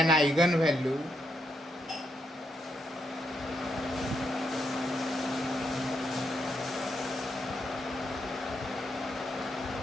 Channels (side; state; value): both; normal; correlation 0.80